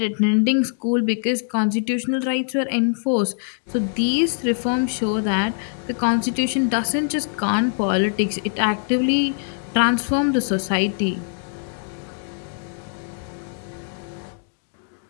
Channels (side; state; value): right; silent; 64 dB below the other